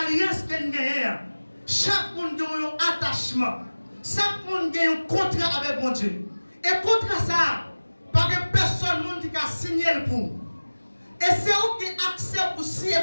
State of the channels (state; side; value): inverted; both; correlation -1.00